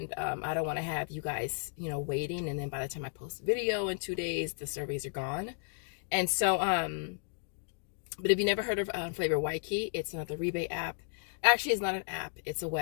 I don't want to have you guys, waiting, and then by the time I post the video in 2 days, the surveys are gone. And so, but if you never heard of Flavor Y Key, it's another rebate app. Actually, it's not an app, it's a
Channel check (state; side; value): silent; right; digital silence